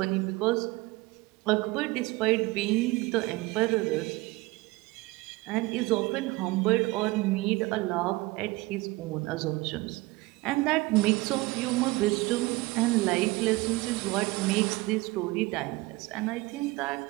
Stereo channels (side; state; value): left; quieter; 21.5 dB